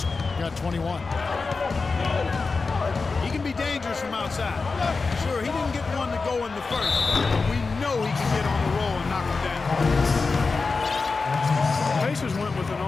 got 21. He can be dangerous from outside. Sure, he didn't get one to go in the first, but we know he can get on the roll and knock him down. The Pacers went with an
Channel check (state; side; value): quieter; right; 4.2 dB